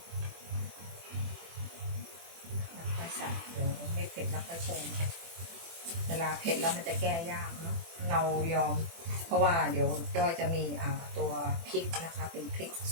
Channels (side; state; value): left; late; 24 ms